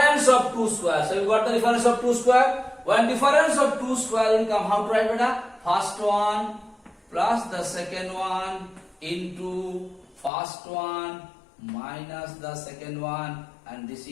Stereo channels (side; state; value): right; drops out; at 10.3 s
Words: of two squares. So you got the difference of two square. When difference of two square will come, how to write beta? First one plus the second one into first one minus the second one, and this